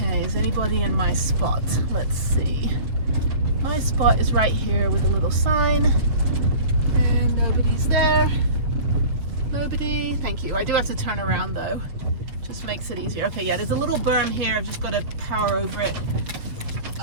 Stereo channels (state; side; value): late; left; 7.4 ms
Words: is anybody in my spot? Let's see. My spot is right here with a little sign, and nobody's there. Nobody. Thank you. I do have to turn around though. Just makes it easier. Okay, yeah, there's a little berm here. I've just got to power over it.